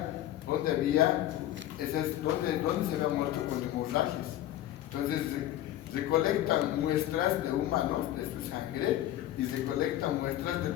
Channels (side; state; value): right; quieter; 13.4 dB